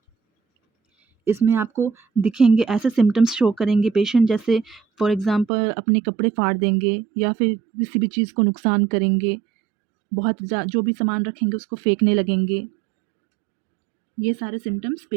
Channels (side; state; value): left; drops out; at 5.5 s